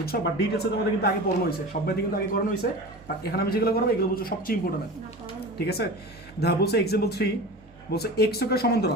বাট ডিটেলসে তোমাদের কিন্তু আগে পড়ানো হয়েছে, সব ম্যাথই কিন্তু আগে করানো হয়েছে, বাট এখানে আমি যেগুলো করাবো এগুলো বলছো সবচেয়ে ইম্পর্টেন্ট, ঠিক আছে? দেখো বলছে এক্সাম্পল 3 বলছে এক্স অক্ষের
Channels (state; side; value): normal; both; correlation 0.33